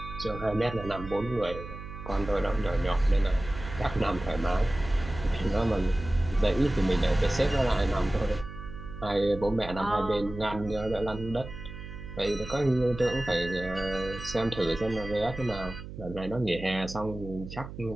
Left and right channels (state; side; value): noise; right; hum, 11 dB below the sound